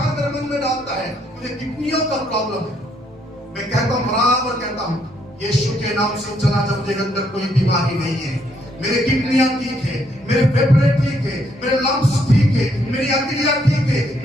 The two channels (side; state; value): both; normal; correlation 0.72